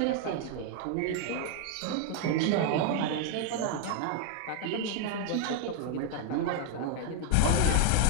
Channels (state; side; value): different; both; correlation 0.01